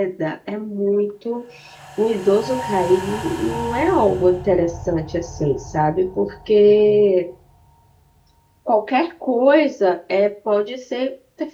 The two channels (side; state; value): both; identical; correlation 1.00